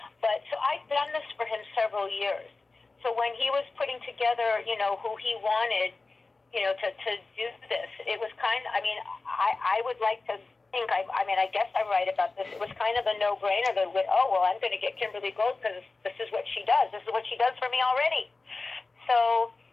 But so I've done this for him several years. So when he was putting together, who he wanted, to do this, it was I would like to think, I guess I'm right about this. It was kind of a no-brainer that, I'm going to get Kimberly Gold because this is what she does. This is what she does for me already. So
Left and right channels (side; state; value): right; quieter; 3.7 dB